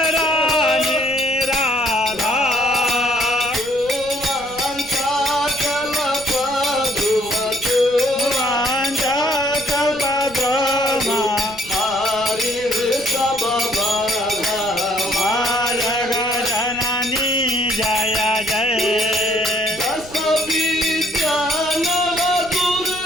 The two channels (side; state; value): right; noise; rumble, 19 dB below the sound